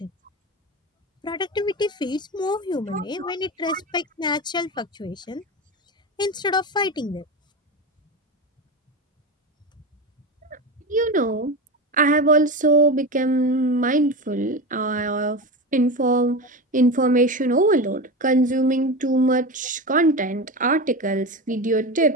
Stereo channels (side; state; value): both; normal; correlation 0.22